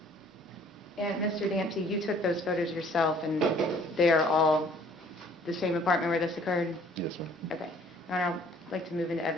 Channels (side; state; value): both; normal; correlation 0.57